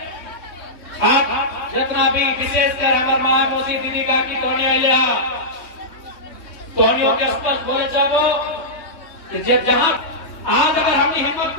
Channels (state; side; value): late; right; 3.2 ms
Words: आप जितना भी विशेषकर हमारे मायमोसी दीदी का की तोहनी आइया तोहनियों के स्पष्ट बोले चाहो जहां आज अगर हमने हिम्मत